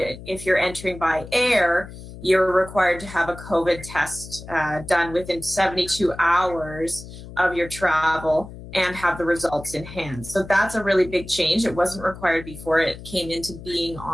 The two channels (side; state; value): left; noise; hum, 14 dB below the sound